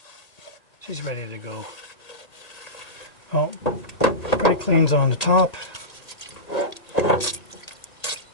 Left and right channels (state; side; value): late; right; 1.8 ms